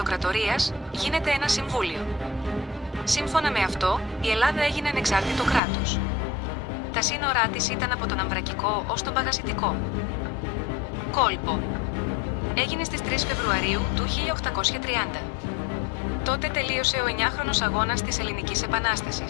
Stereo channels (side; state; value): right; drops out; at 5.6 s